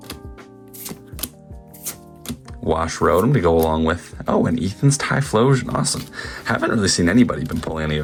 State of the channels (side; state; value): both; identical; correlation 1.00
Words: Wash Rotom to go along with, and Ethan's Typhlosion. Awesome. Haven't really seen anybody been pulling any